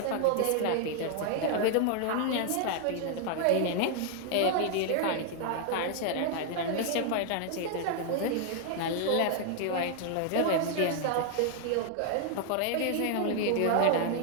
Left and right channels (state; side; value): different; both; correlation 0.00